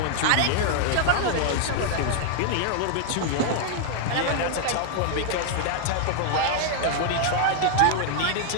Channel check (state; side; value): different; both; correlation -0.01